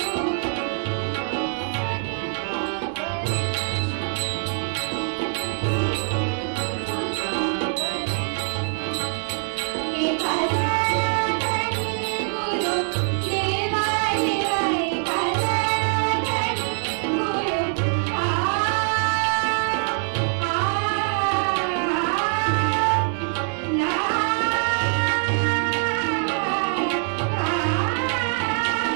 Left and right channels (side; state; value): left; silent; 62 dB below the other